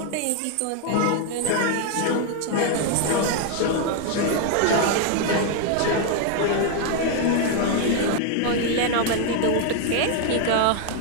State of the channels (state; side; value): different; both; correlation 0.00